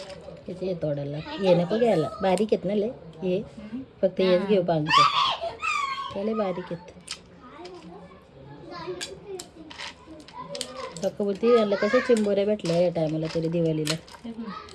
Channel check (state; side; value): identical; both; correlation 1.00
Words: हे तोडायला हे नको घ्यायला. बारीक आहेत ना लय हे. फक्त हेच घेऊ पांच. त्याला बारीक आहेत. फक्त बोलते याला कशा चिंबोऱ्या भेटल्या या टायमाला तरी दिवाळीला.